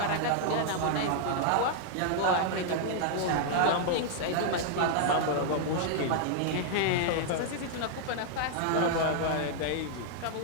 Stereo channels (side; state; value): both; different; correlation -0.01